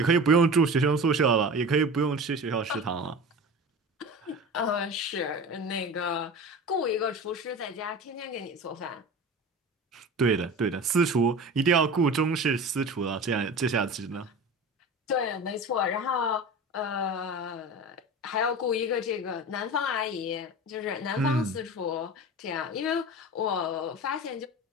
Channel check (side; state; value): both; normal; correlation 0.33